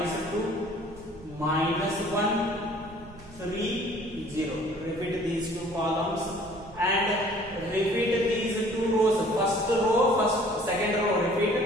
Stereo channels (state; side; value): noise; right; rumble, 21 dB below the sound